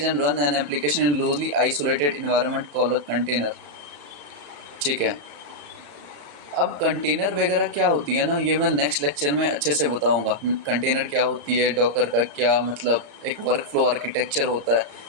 and run an application in loosely isolated environment called a container. ठीक है, अब कंटेनर वगैरह क्या होती है ना, ये मैं नेक्स्ट लेक्चर में अच्छे से बताऊंगा। कंटेनर क्या होती है, डॉकर का क्या मतलब, एक वर्क फ्लो आर्किटेक्चर होता है।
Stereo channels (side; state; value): left; late; 35 ms